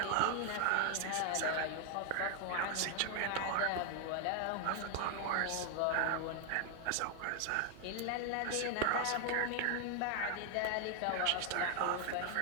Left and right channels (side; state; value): both; different; correlation 0.00